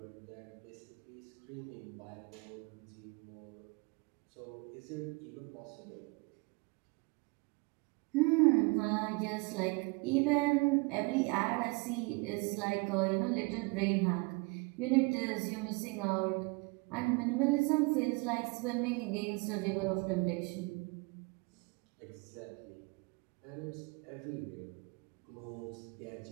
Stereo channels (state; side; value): quieter; left; 28.0 dB